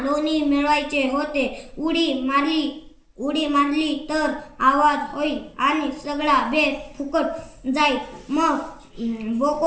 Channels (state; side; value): identical; both; correlation 1.00